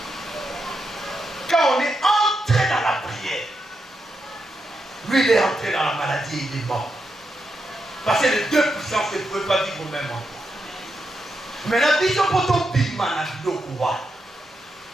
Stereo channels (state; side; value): normal; both; correlation 0.84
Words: Quand on est entré dans la prière, lui il est entré dans la maladie et il est mort. Parce que les deux puissances ne pouvaient pas vivre au même endroit. Mais la vision pour ton bima